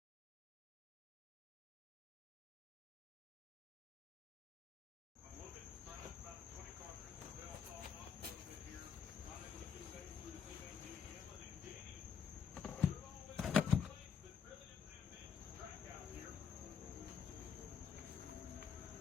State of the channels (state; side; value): quieter; right; 6.9 dB